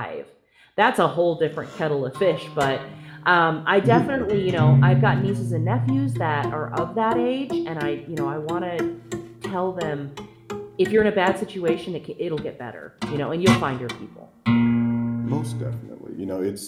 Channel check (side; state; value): both; identical; correlation 1.00